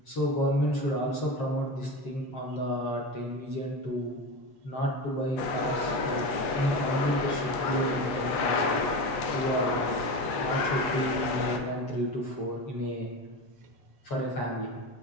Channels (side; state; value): right; late; 8.2 ms